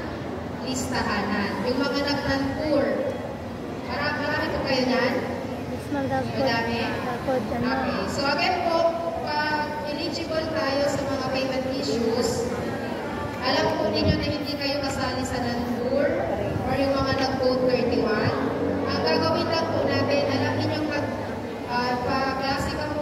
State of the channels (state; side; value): identical; both; correlation 1.00